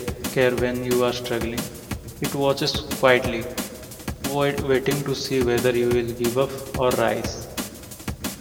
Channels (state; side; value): identical; both; correlation 1.00